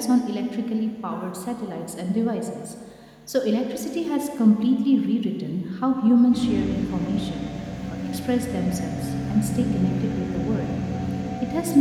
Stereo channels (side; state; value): both; identical; correlation 1.00